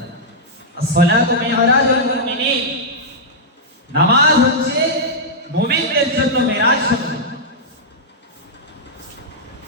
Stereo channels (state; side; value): normal; both; correlation -0.08